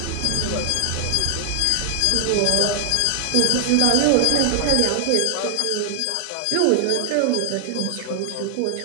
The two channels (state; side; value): different; both; correlation 0.00